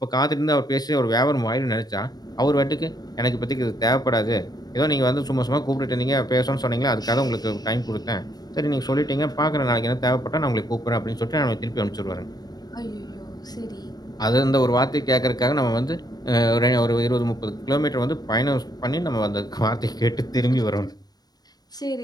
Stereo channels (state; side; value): late; right; 0.19 ms